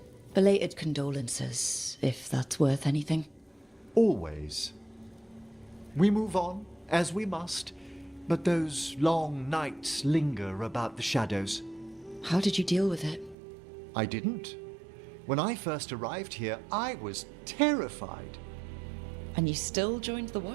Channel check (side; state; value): left; drops out; at 13.4 s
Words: Belated condolences, if that's worth anything. Always. We move on, as we must, but those long nights linger about the shadows. How did you deal with it? I didn't. When I first arrived here, I was terrified. And you still joined the